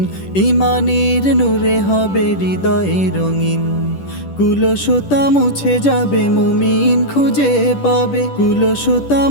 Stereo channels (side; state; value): right; late; 10 ms